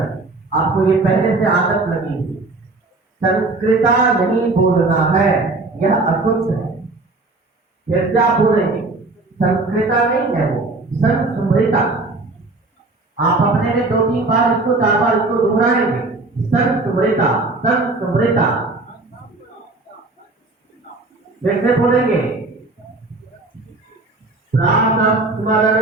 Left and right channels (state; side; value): quieter; left; 3.2 dB